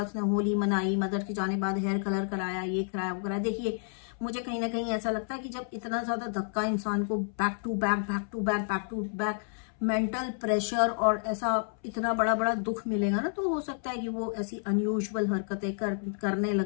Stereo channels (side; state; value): right; silent; 58 dB below the other